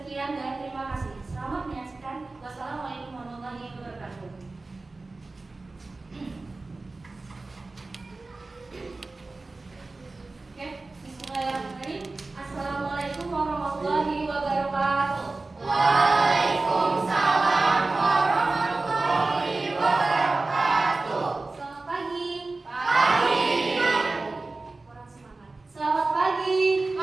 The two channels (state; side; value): quieter; left; 3.4 dB